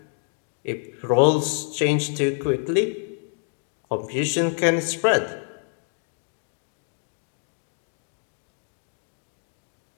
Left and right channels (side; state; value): right; silent; 60 dB below the other